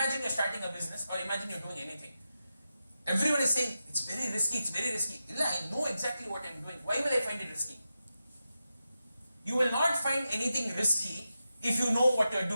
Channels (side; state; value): both; inverted; correlation -0.90